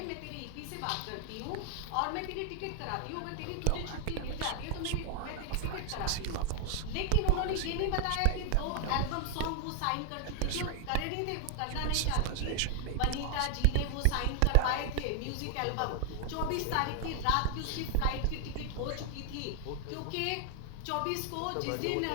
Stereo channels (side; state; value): both; different; correlation 0.00